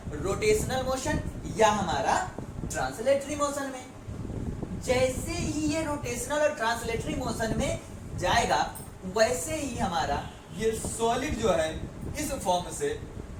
रोटेशनल मोशन या हमारा ट्रांसलेटरी मोशन में। जैसे ही ये रोटेशनल और ट्रांसलेटरी मोशन में जाएगा वैसे ही हमारा ये सॉलिड जो है इस फॉर्म से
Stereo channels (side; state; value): both; identical; correlation 1.00